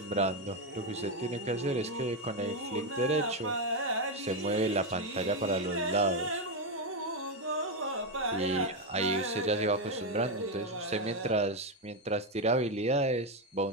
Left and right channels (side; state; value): both; normal; correlation 0.07